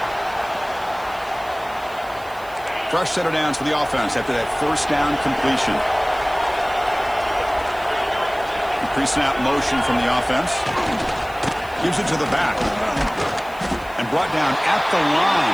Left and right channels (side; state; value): right; noise; hiss, 23 dB below the sound